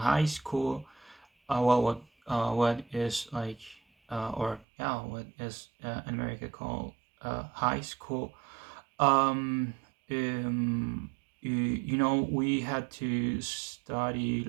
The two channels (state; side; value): drops out; left; at 4.7 s